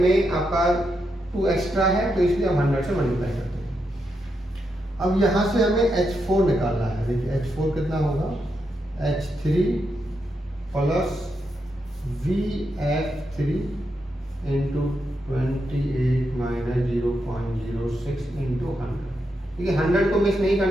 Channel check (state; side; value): normal; both; correlation 0.83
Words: में आपका 2 एक्स्ट्रा है, तो इसलिए हम 100 से मल्टीप्लाई करते हैं। अब यहाँ से हमें H4 निकालना है। देखिए H4 कितना होगा, H3 plus VF3 into 28 minus 0.06 into 100। ठीक है, 100 को मिस नहीं